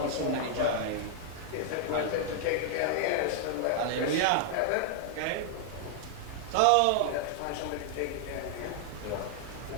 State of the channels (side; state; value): both; different; correlation 0.00